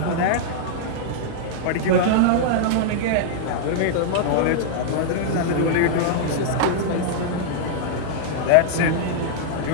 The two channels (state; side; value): different; both; correlation -0.01